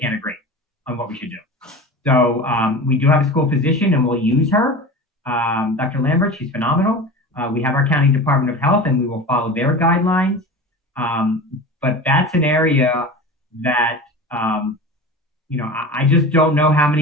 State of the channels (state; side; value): normal; both; correlation 0.32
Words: agree on what we should do. So we do have a school physician, and we'll use her, Dr. Lambert. She's phenomenal. We have our county Department of Health, and we will follow their guidelines. But that's an area that I just don't know how